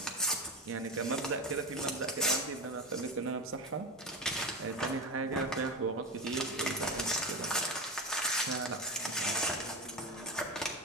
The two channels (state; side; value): normal; both; correlation 0.22